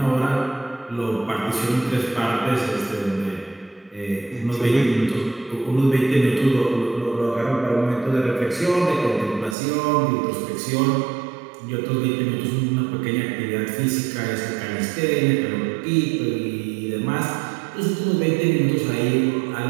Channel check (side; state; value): left; drops out; at 9.6 s